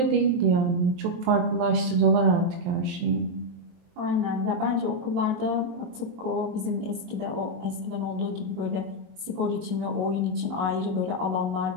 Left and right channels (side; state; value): left; late; 22 ms